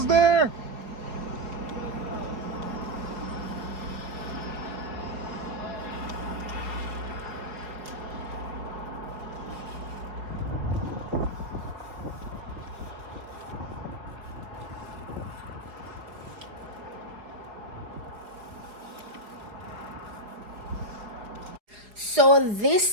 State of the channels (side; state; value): left; late; 4.8 ms